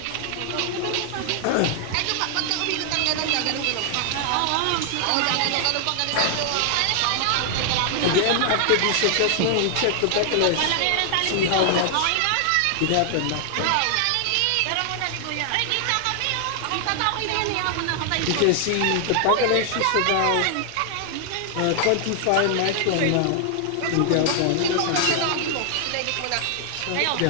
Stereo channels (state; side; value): different; both; correlation 0.00